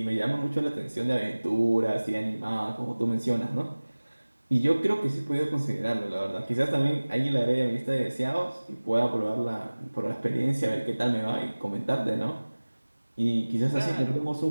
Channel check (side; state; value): both; inverted; correlation -1.00